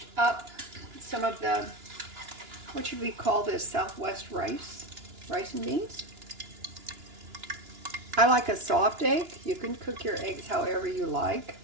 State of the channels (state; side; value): late; left; 2.9 ms